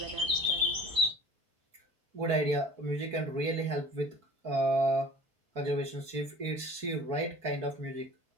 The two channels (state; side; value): late; left; 4.5 ms